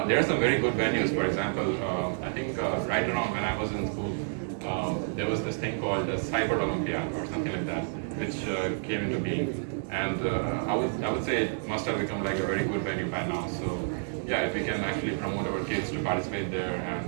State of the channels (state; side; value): silent; left; digital silence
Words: There are some very good venues. For example, I think right around when I was in school, there was this thing called the Cyber Olympiad or something like that, which came into being, and I would say it must have become like a very good venue by now. So yeah, if we can actually promote our kids to participate there